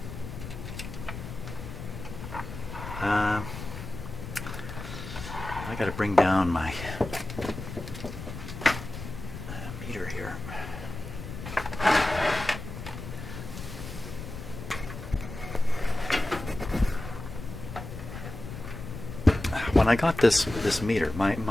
I got to bring down my meter here. When I got this meter,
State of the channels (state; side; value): noise; left; rumble, 9 dB below the sound